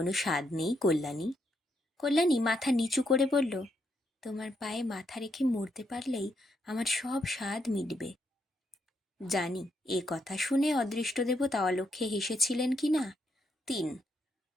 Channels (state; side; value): normal; both; correlation 0.78